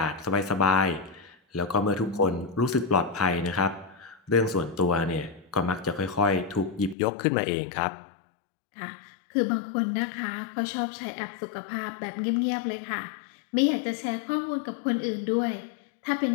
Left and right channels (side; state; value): right; drops out; at 7.0 s